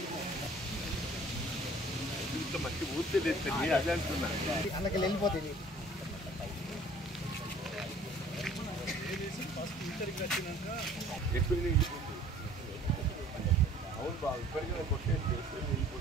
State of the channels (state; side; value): normal; both; correlation 0.52